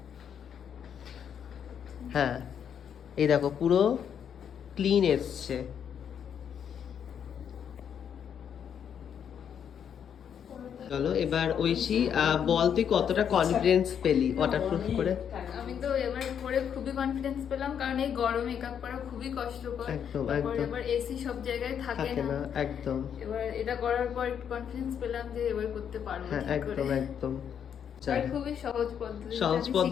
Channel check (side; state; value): right; quieter; 8.3 dB